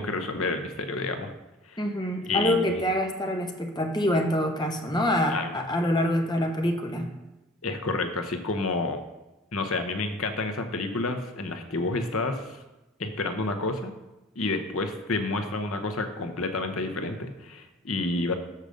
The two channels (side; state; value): both; normal; correlation 0.46